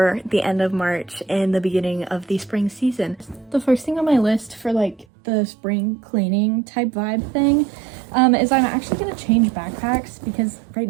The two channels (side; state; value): left; drops out; at 5.1 s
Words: the end of March and the beginning of the spring season. The first thing on my list for like the spring cleaning type vibe thing is I'm actually going to change backpacks because right